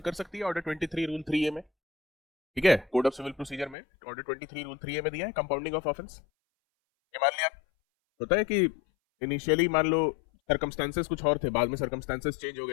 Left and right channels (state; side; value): drops out; right; at 3.8 s